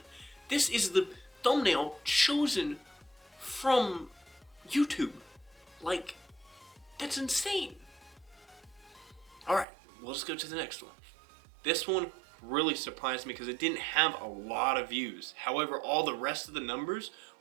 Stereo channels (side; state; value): left; drops out; at 9.7 s